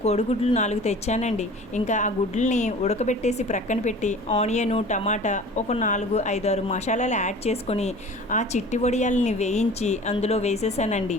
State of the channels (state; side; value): normal; both; correlation 0.42